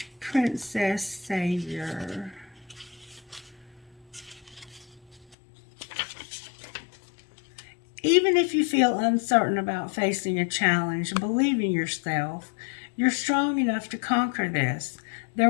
Princess Savior. Even if you feel uncertain about facing a challenge, believe in yourself. You're strong enough to conquer this. There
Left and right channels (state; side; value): drops out; right; at 5.4 s